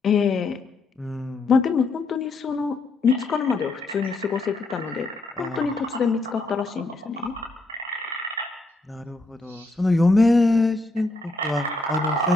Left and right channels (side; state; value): right; quieter; 3.2 dB